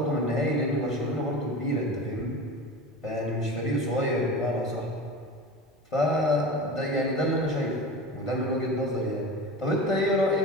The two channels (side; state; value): both; normal; correlation 0.32